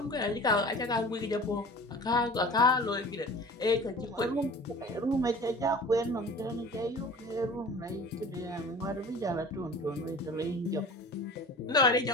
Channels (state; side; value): normal; both; correlation 0.41